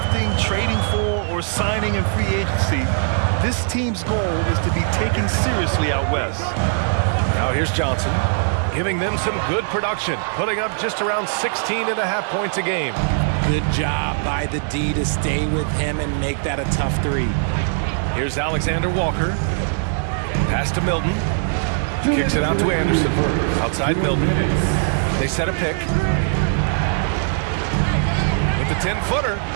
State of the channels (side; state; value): left; silent; digital silence